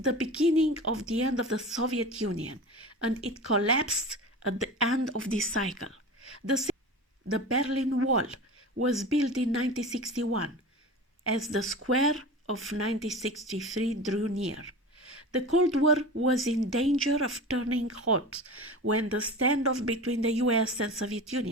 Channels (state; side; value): normal; both; correlation 0.32